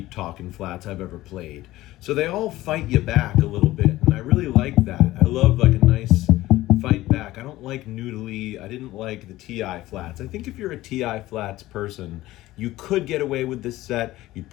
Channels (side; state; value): right; quieter; 16.7 dB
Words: Talkin flats I've ever played. So they all fight you back a little bit, and I really like that. I love a nice fight back. I don't like noodly. I didn't like the TI flats. I think if you're a TI flats person, you could get away with this set. You'd